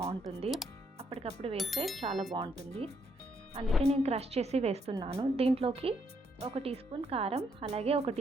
అప్పటికప్పుడు వేస్తే చాలా బాగుంటుంది, అందుకే నేను క్రష్ చేసి వేస్తున్నాను. దీంట్లోకి 1 టీ స్పూన్ కారం, అలాగే 1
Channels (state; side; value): normal; both; correlation 0.73